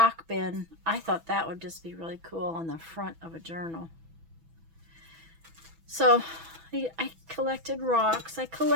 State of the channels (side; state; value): left; late; 6.1 ms